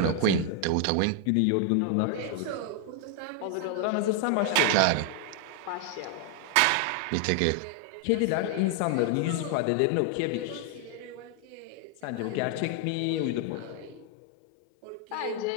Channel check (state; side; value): different; both; correlation 0.00